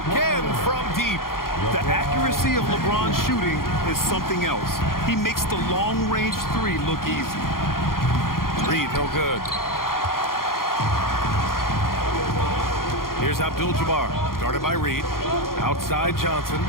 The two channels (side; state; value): right; late; 0.92 ms